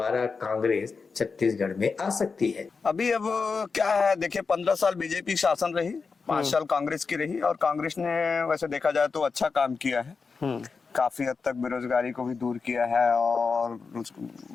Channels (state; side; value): quieter; right; 4.9 dB